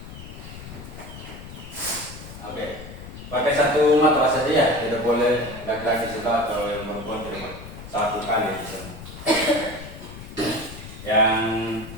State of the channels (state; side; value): noise; left; rumble, 13 dB below the sound